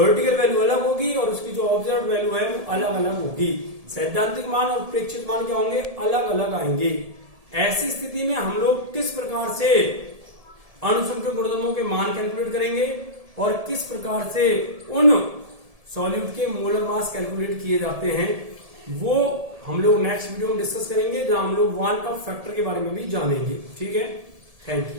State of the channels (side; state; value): left; late; 1.7 ms